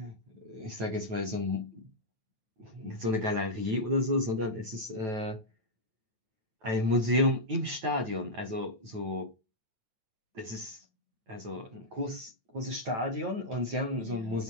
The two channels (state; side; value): late; left; 9.2 ms